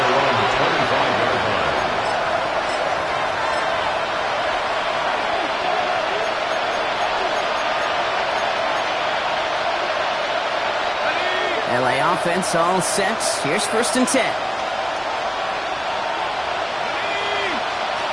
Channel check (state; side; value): noise; right; hum, 28 dB below the sound